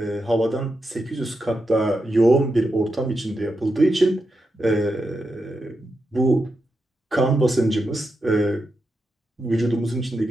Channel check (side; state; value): both; normal; correlation 0.87